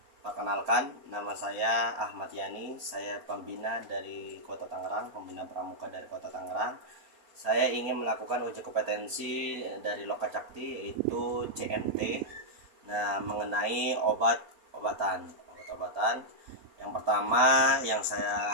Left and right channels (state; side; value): late; left; 4.2 ms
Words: Perkenalkan, nama saya Ahmad Yani. Saya pembina dari Kota Tangerang, pembina pramuka dari Kota Tangerang. Saya ingin melakukan uji kompetensi dari Lokacakti, yaitu CMT. Nah, mengenai obat-obatan. Yang pertama yang